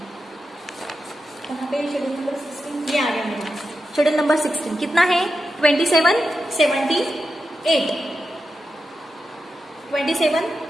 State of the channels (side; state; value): both; normal; correlation 0.89